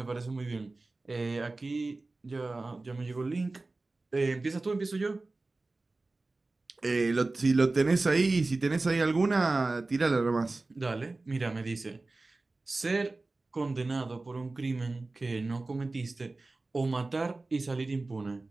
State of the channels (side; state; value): left; quieter; 3.3 dB